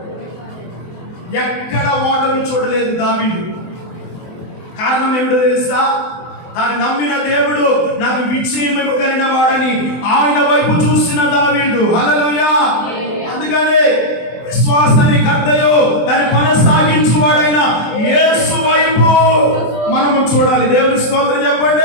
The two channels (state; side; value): late; right; 23 ms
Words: ఎక్కడ ఓటమి చూడలేదు దావీదు. కారణం ఏమిటో తెలుసా? తాను నమ్మిన దేవుడు నాకు విజయం ఇవ్వగలిగిన వాడని ఆయన వైపు చూసిన దావీదు. హల్లెలూయా. అందుకనే విశ్వాసాన్ని కర్తయో దాన్ని కొనసాగించువాడైన యేసు వైపు మనము చూడాలి. దేవుని స్తోత్రం